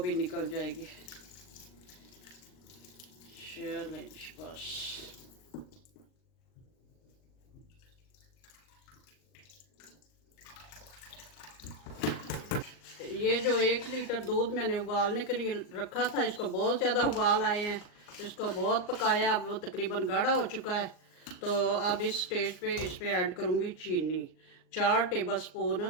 निकल जाएगी। चलें बस। ये जो 1 लीटर दूध मैंने उबालने के लिए रखा था, इसको बहुत ज़्यादा उबाल आए हैं। इसको बहुत पकाया, अब वो तकरीबन गाढ़ा हो चुका है। तो अब इस स्टेज पे इसमें ऐड करूँगी चीनी। 4 टेबल स्पून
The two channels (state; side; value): late; right; 39 ms